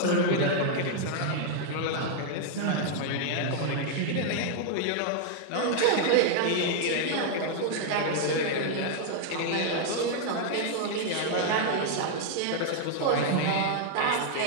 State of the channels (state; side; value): different; both; correlation 0.00